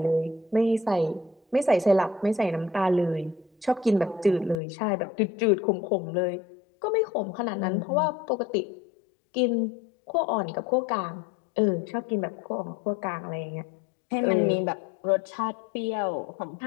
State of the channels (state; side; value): drops out; right; at 4.5 s